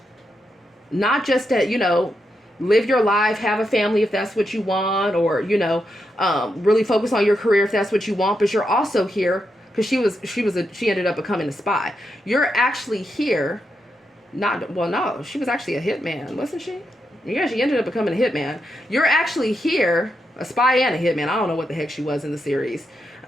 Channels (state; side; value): normal; both; correlation 0.84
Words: Not just that, you know, live your life, have a family if that's what you want, or, you know, really focus on your career if that's what you want. But you're also here because she ended up becoming a spy. You're actually here. No, she was actually a hitman, wasn't she? Yeah, she ended up becoming a hitman. You're actually here, a spy and a hitman. I don't know what the heck she was in the series.